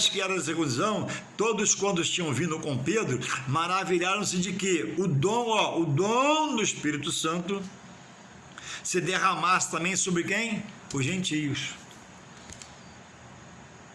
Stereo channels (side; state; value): both; identical; correlation 1.00